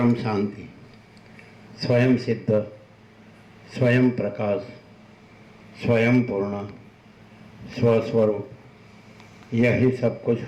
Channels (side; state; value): both; identical; correlation 1.00